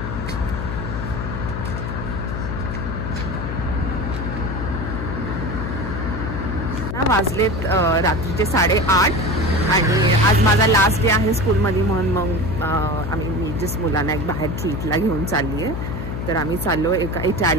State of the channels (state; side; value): noise; left; hum, 4 dB below the sound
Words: वाजलेत रात्रीचे 8:30 आणि आज माझा लास्ट डे आहे स्कूलमध्ये, म्हणून मग मी जस्ट मुलांना एक बाहेर ट्रीटला घेऊन चालली आहे. तर आम्ही चाललो एका